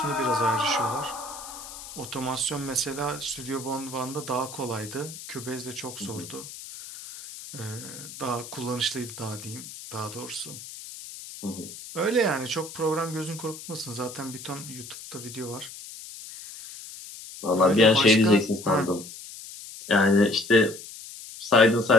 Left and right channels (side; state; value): left; noise; hiss, 13 dB below the sound